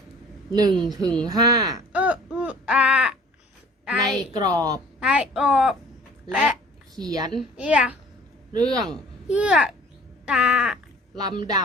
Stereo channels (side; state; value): both; normal; correlation 0.50